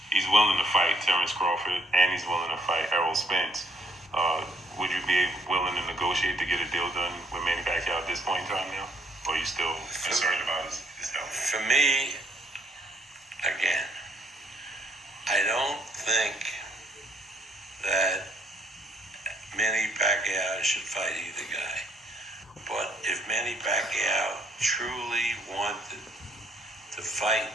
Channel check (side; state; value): both; normal; correlation 0.67